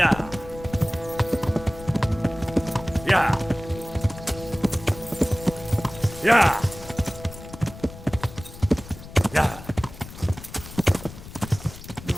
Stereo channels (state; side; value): noise; left; rumble, 15 dB below the sound